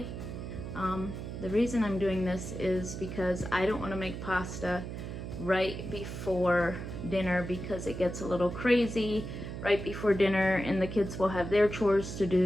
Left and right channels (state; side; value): noise; right; hum, 7 dB below the sound